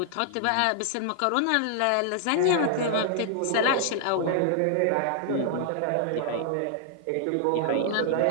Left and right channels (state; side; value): different; both; correlation 0.00